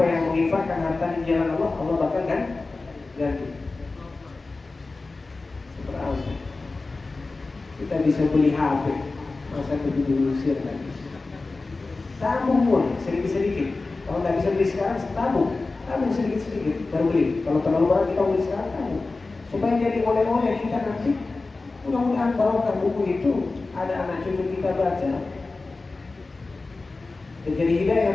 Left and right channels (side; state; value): right; quieter; 3.6 dB